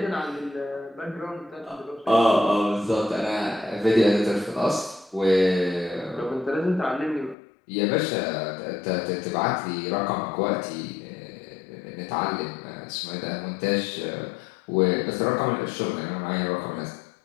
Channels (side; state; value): right; drops out; at 7.4 s